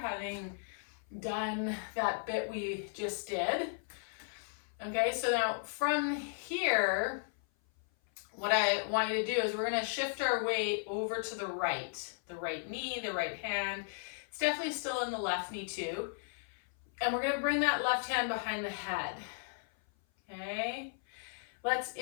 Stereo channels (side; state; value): right; silent; 54 dB below the other